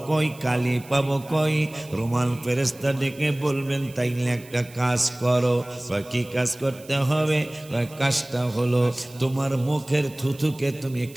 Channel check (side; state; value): right; noise; hiss, 22 dB below the sound